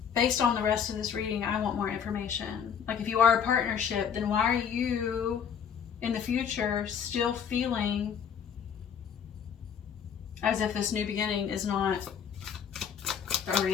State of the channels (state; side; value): quieter; right; 7.7 dB